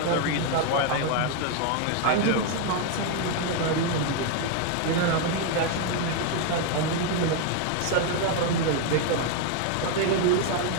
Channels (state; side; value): different; both; correlation 0.01